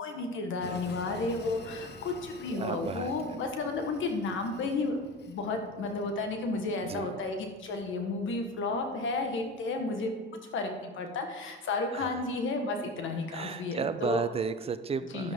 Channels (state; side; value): normal; both; correlation 0.30